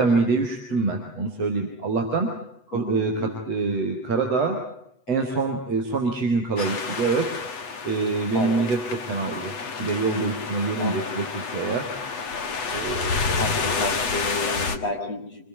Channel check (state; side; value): late; right; 8.1 ms